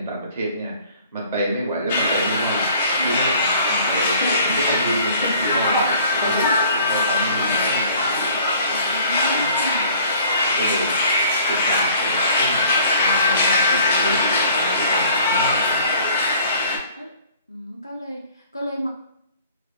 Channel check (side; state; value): both; inverted; correlation -0.53